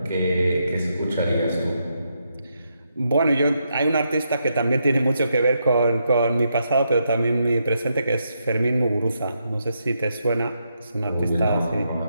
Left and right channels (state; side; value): inverted; both; correlation -0.81